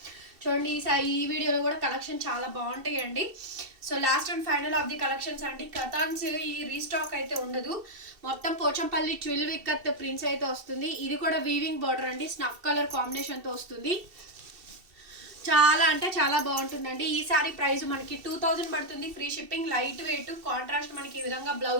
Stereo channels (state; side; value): late; left; 2.7 ms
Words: చూడండి ఈ వీడియోలో కూడా కలెక్షన్ చాలా బాగుంటాయి అండి. So last and final of the collections అండి. కథాన్స్ ఈ రీస్టాక్ అయితే ఉండదు, మొత్తం పోచంపల్లి 12 ఇక్కత్ ప్రింట్స్ అయితే వస్తుంది. ఇది కూడా వీవింగ్ బార్డర్ అండి, స్నఫ్ కలర్ కాంబినేషన్ తో వస్తుంది. చాలా అంటే చాలా బాగుంటుందండి. ఈ సారీ ప్రైస్ మనకి 2000 పడుతుంది, free shipping, light weight, contrast మనకి ఈ విధంగా